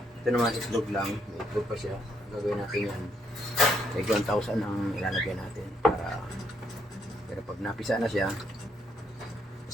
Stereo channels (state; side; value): normal; both; correlation 0.72